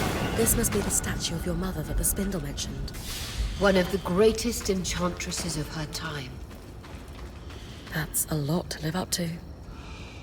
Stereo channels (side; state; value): both; identical; correlation 1.00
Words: this must be the statue of your mother that the spindle mentioned. One of the greatest enchantresses of her time. That's a lot to live up to.